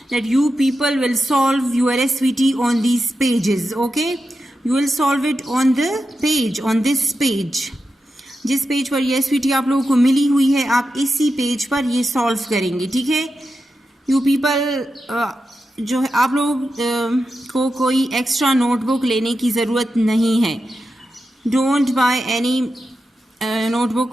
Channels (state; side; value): normal; both; correlation 0.89